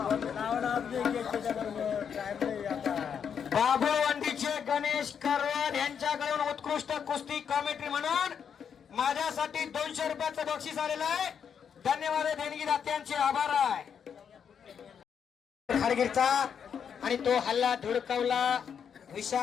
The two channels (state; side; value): quieter; right; 7.5 dB